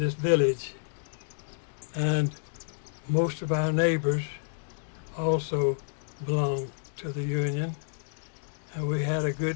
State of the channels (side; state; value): right; silent; digital silence